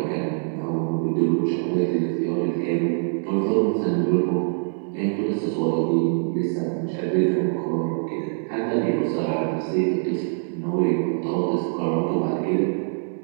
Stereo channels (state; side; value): silent; left; digital silence